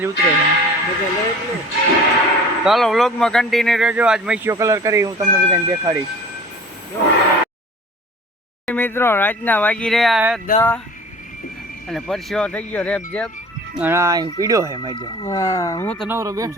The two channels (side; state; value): both; normal; correlation 0.43